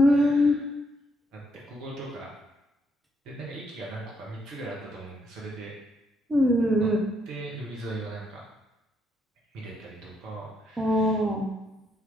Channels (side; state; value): both; normal; correlation 0.75